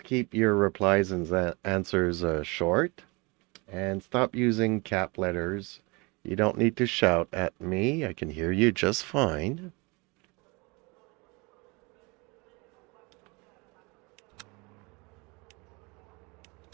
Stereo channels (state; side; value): quieter; left; 27.9 dB